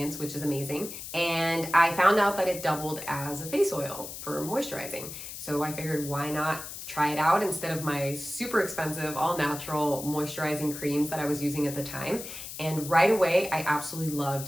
which is amazing. And I found out that it doubled as a face oil for moisturizing. So I figured, why not try it out instead of my super expensive all natural moisturizing creams that I was using at the time. And right away, I absolutely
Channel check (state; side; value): noise; left; hiss, 10 dB below the sound